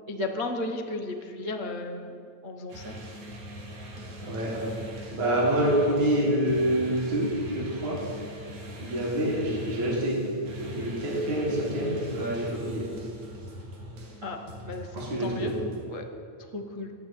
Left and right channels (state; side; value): late; left; 9.0 ms